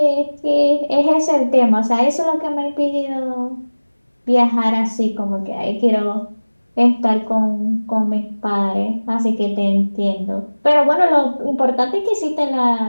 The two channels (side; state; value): both; inverted; correlation -1.00